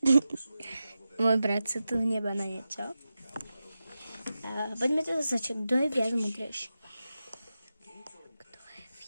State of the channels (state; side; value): inverted; both; correlation -0.92